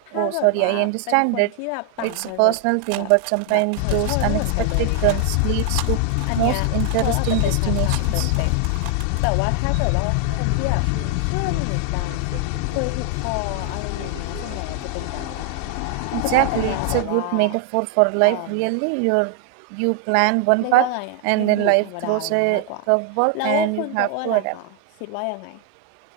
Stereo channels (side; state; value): both; different; correlation 0.00